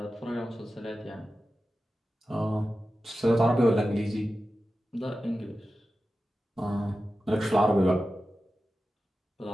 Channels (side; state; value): both; normal; correlation 0.93